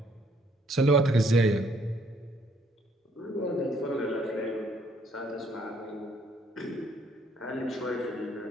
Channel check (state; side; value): normal; both; correlation 0.66